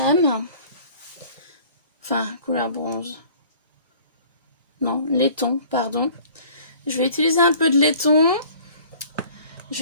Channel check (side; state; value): both; inverted; correlation -0.50